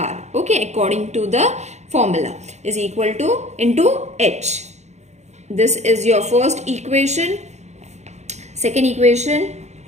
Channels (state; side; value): late; left; 0.33 ms